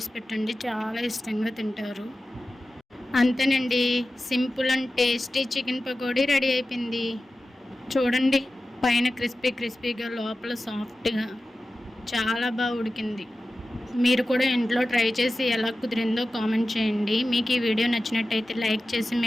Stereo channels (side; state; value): both; normal; correlation 0.94